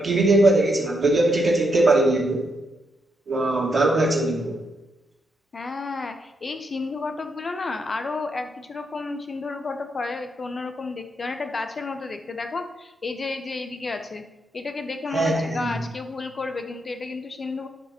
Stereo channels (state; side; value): normal; both; correlation 0.79